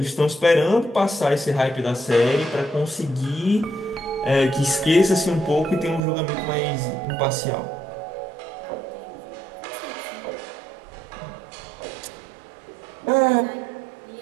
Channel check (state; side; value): drops out; left; at 6.0 s